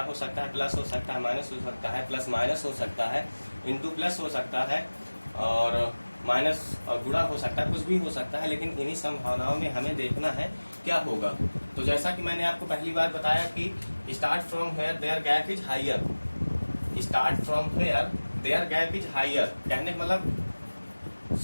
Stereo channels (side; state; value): both; inverted; correlation -1.00